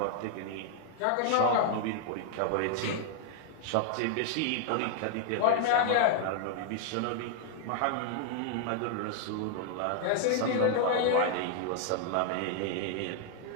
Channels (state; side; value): different; both; correlation 0.00